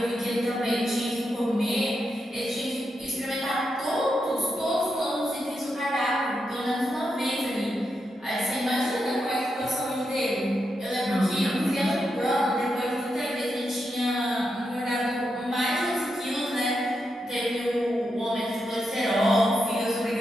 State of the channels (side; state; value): both; normal; correlation 0.85